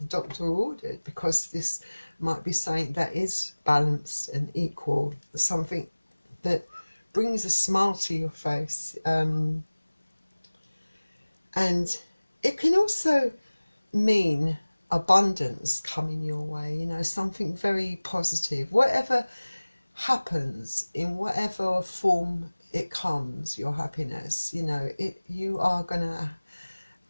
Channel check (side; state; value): both; inverted; correlation -1.00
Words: doctor ordered, because this might be something that is balanced and equal, something that brings a smile to your face. And it can also mean abundance coming your way, you know, something very positive. Whatever happens, in whatever form it comes, your happiness, you know, you are gonna